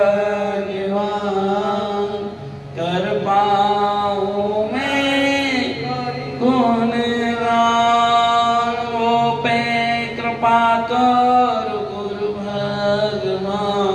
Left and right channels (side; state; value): both; identical; correlation 1.00